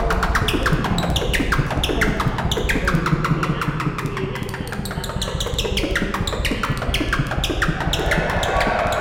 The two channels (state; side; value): identical; both; correlation 1.00